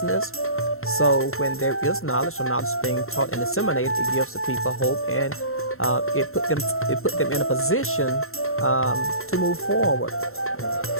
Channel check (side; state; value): right; late; 0.62 ms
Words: So when there is knowledge, or knowledge being taught and disseminated, it gives the people hope, and it put them in a position to move forward.